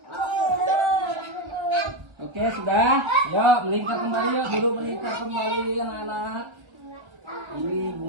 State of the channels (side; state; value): left; late; 1.5 ms